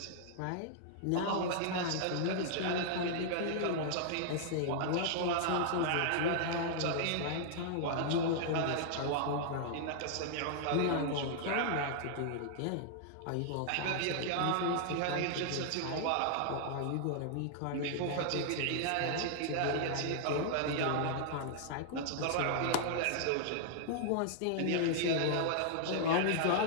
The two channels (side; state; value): both; different; correlation -0.01